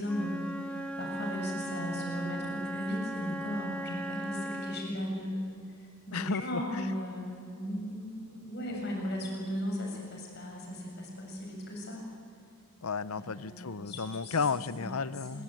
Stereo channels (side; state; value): both; normal; correlation 0.48